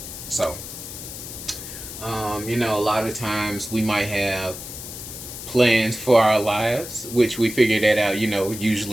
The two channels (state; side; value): noise; left; hiss, 10 dB below the sound